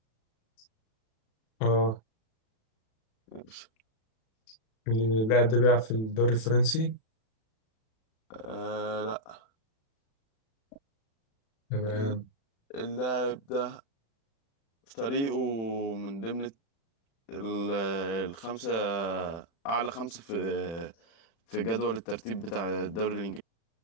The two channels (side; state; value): right; late; 36 ms